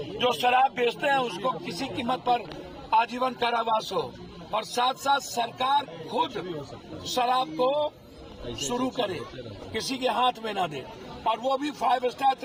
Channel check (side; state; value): both; identical; correlation 1.00